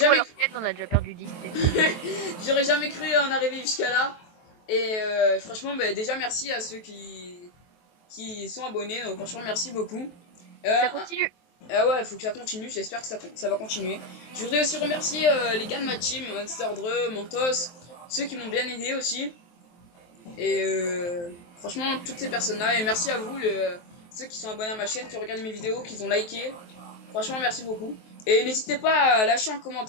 leur tête, on a déjà perdu 10. j'aurais jamais cru en arriver jusqu'à là. Et franchement, bah, déjà, merci à ceux qui sont abonnés. Donc, franchement, merci beaucoup. Ça continue. Ah ouais, il faut que ça continue. J'espère que ça va continuer. Je voudrais aussi remercier les gars de ma team, Monster Dre, Mentos, ceux qui m'ont bien aidé aussi. Et franchement, toutes ces personnes-là. Et merci à vous, ceux qui sont abonnés à ma chaîne, qui regardent mes vidéos, qui ont liké. Franchement, merci beaucoup. Et n'hésitez pas à lâcher un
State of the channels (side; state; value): right; late; 23 ms